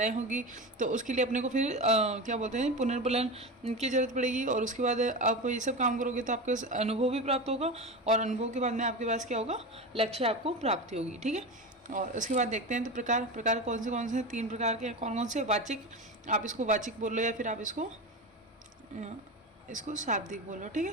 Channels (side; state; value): both; normal; correlation 0.23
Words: होगी। तो उसके लिए अपने को फिर क्या बोलते हैं, पुनर्बलन की जरूरत पड़ेगी। और उसके बाद आप ये सब काम करोगे तो आपको अनुभव भी प्राप्त होगा, और अनुभव के बाद में आपके पास क्या होगा? लक्ष्य आपको प्राप्ति होगी। ठीक है, और उसके बाद देखते हैं तो प्रकार कौन से 3 प्रकार के कौन से? वाचिक, आप इसको वाचिक बोल लो या फिर आप इसको शाब्दिक बोलो। ठीक है,